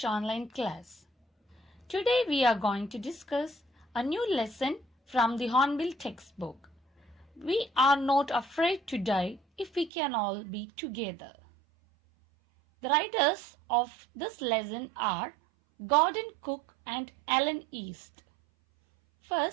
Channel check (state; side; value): drops out; left; at 9.9 s